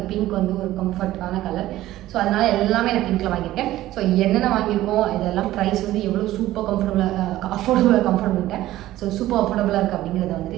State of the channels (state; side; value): quieter; left; 15.1 dB